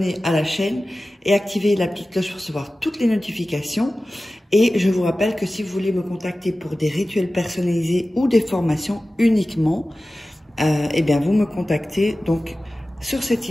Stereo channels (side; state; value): both; normal; correlation 0.96